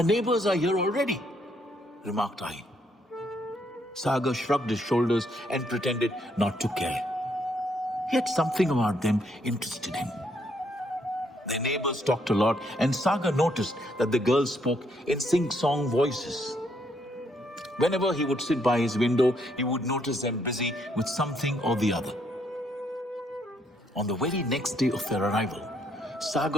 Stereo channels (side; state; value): both; normal; correlation 0.72